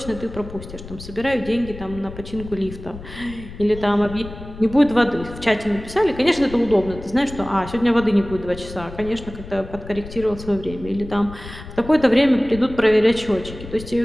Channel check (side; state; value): left; noise; rumble, 14 dB below the sound